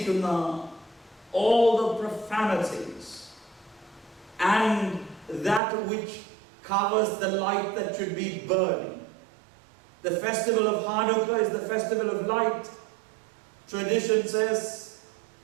all the profanities and that which covers the light that should be burning. The festival of Hanukkah is the festival of light. Tradition says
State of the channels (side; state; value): left; drops out; at 5.6 s